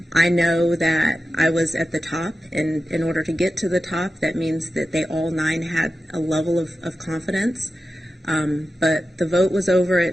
I know that I was at the top, and in order to get to the top, that means that they all 9 had a level of confidence. But the vote was over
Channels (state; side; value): normal; both; correlation 0.92